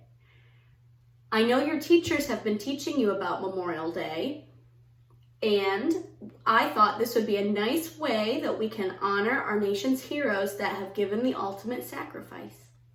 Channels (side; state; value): both; identical; correlation 1.00